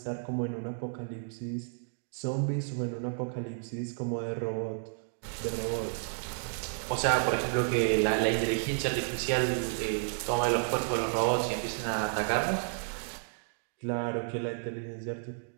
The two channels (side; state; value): left; silent; digital silence